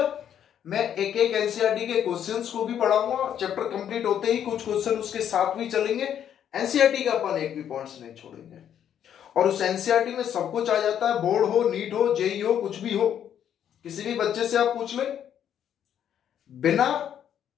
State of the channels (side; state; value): right; quieter; 9.5 dB